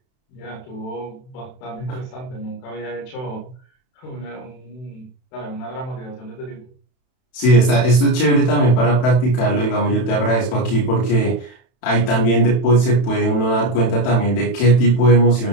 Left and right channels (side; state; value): right; late; 31 ms